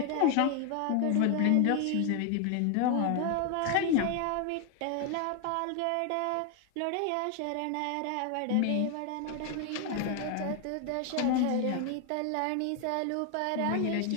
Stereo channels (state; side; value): different; both; correlation 0.01